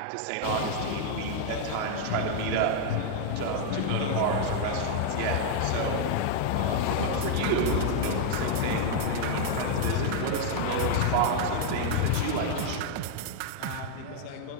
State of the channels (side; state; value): both; different; correlation 0.00